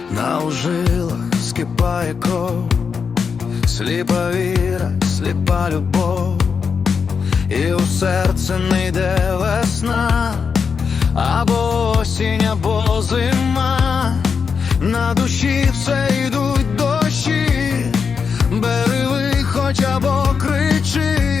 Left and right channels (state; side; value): quieter; right; 5.9 dB